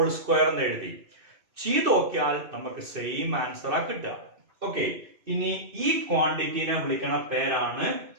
square എന്ന് എഴുതി ചെയ്ത് നോക്കിയാൽ നമുക്ക് സെയിം ആൻസർ ആ കിട്ടുക. ഓക്കെ, ഇനി ഈ ക്വാണ്ടിറ്റിനെ വിളിക്കണ പേരാണ്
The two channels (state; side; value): late; left; 2.6 ms